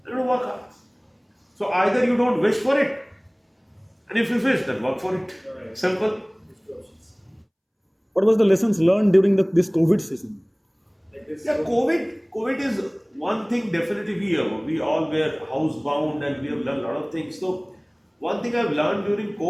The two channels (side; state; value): both; identical; correlation 1.00